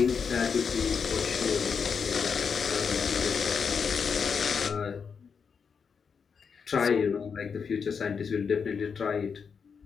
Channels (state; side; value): quieter; right; 6.1 dB